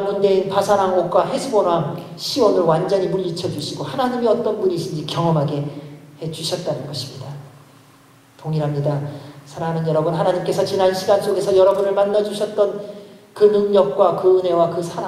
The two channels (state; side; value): identical; both; correlation 1.00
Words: 군대인 바산왕 옥과 헤스본 왕 시온을 완전히 물리쳐 주시고 하나님이 어떤 분이신지 경험하게 해주셨다는 것입니다. 동일합니다. 사랑하는 여러분, 하나님께서 지난 시간 속에서 여러분을 만나주셨던 그 능력과 그 은혜와 그